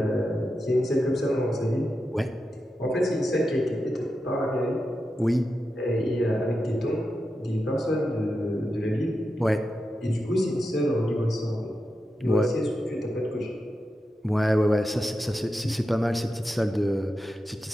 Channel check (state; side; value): normal; both; correlation 0.89